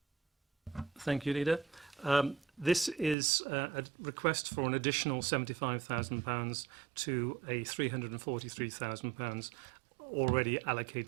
Thank you, Leader. This is a request for an additional £75,000 to a £343,000 already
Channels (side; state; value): left; drops out; at 3.2 s